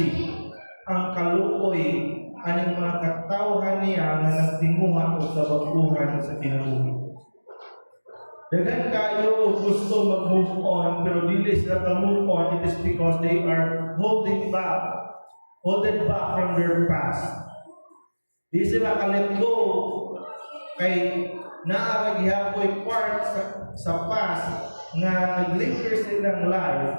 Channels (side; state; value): both; inverted; correlation -1.00